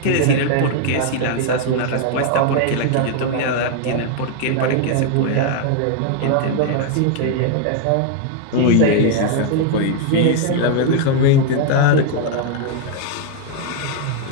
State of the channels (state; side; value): different; both; correlation 0.00